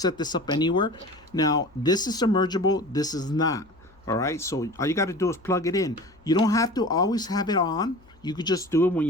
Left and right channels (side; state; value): left; noise; hum, 30 dB below the sound